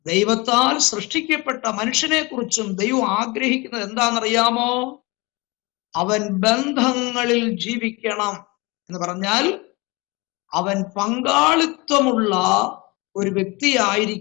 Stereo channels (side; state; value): right; quieter; 25.6 dB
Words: ദൈവത്താൽ സൃഷ്ടിക്കപ്പെട്ട മനുഷ്യനെ കുറിച്ചും ദൈവം ആഗ്രഹിക്കുന്നത് എന്താണെന്നറിയാമോ? അവൻ ബന്ധങ്ങളിൽ ജീവിക്കണം എന്ന് പറഞ്ഞാൽ അവൻ പങ്കാളിത്തമുള്ള ഒരു